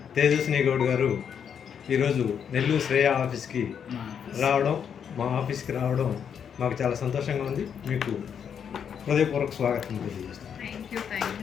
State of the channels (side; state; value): right; quieter; 7.7 dB